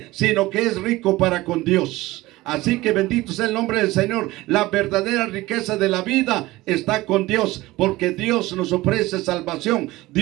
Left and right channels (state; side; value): quieter; left; 18.8 dB